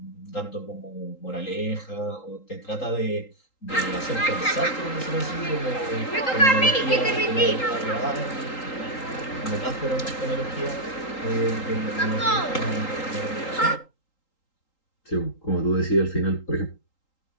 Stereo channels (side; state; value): right; late; 3.8 ms